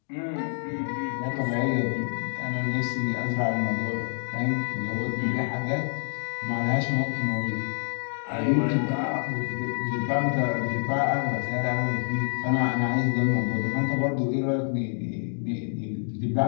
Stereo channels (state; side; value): silent; right; digital silence